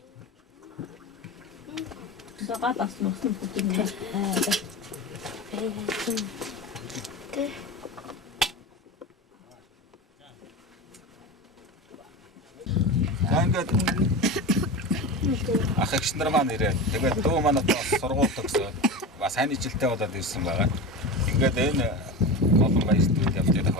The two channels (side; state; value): both; normal; correlation 0.25